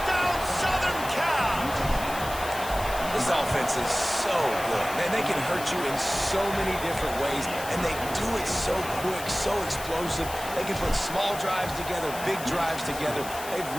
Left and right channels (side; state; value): left; noise; hiss, 11 dB below the sound